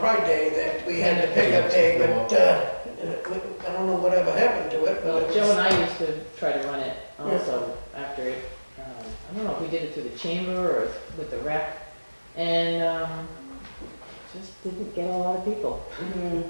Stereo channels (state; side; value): inverted; both; correlation -1.00